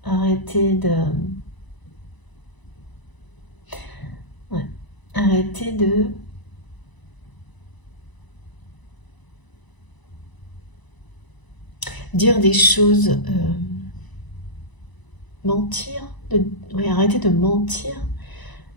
arrêter de... Ouais, arrêter de... dire des choses... mentir, oui, arrêter de mentir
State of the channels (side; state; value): right; late; 1.0 ms